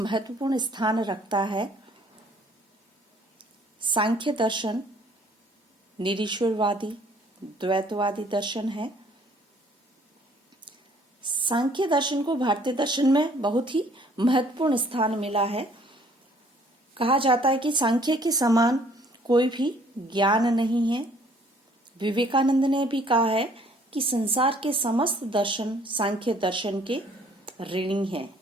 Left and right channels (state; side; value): normal; both; correlation 0.59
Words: स्थान रखता है। सांख्य दर्शन निरीश्वरवादी द्वैतवादी दर्शन है। सांख्य दर्शन को भारतीय दर्शन में बहुत ही महत्वपूर्ण स्थान मिला है। कहा जाता है कि सांख्य के समान कोई भी ज्ञान नहीं है। विवेकानंद ने भी कहा है कि संसार के समस्त दर्शन सांख्य दर्शन के ऋणी हैं।